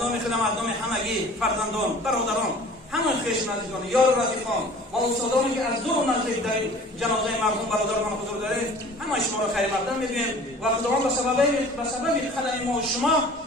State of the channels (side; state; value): both; normal; correlation 0.47